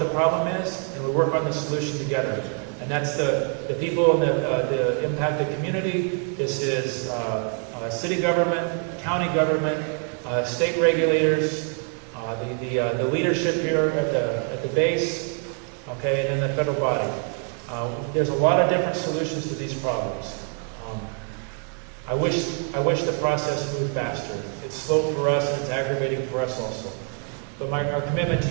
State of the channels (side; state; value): left; quieter; 39.3 dB